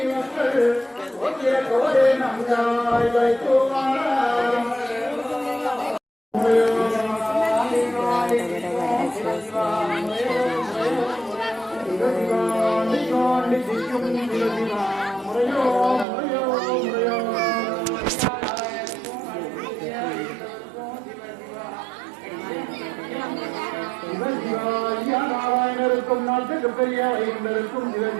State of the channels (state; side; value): drops out; left; at 16.1 s